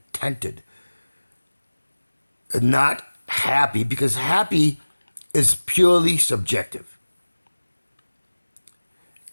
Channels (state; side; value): inverted; both; correlation -1.00